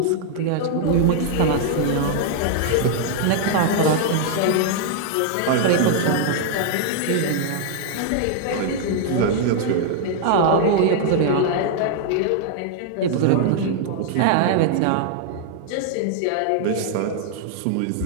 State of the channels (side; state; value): both; different; correlation -0.01